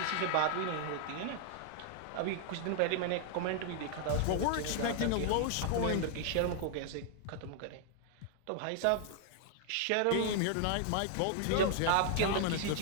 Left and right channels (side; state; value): both; different; correlation 0.00